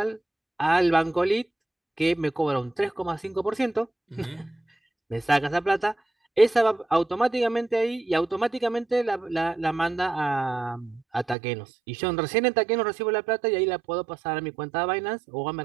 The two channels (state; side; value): drops out; left; at 11.4 s